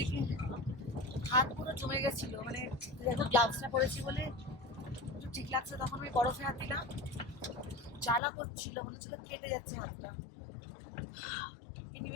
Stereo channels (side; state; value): right; drops out; at 8.2 s